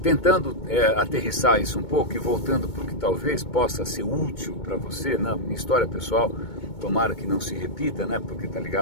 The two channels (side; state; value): right; late; 2.2 ms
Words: tentando aterrissar isso um pouco e voltando para o que talvez possa ser útil para você, na minha história pessoal, tomara que não se repita, né, porque está